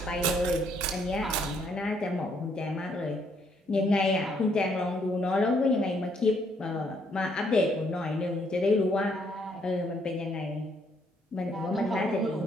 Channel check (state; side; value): normal; both; correlation 0.70